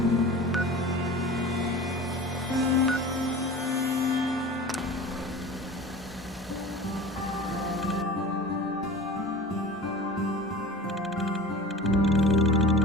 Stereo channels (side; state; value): both; normal; correlation 0.37